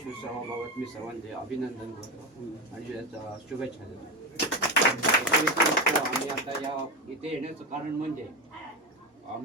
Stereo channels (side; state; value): both; normal; correlation 0.17